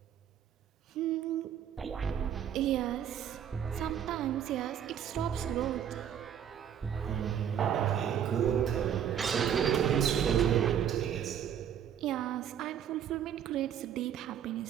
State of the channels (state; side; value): quieter; left; 9.2 dB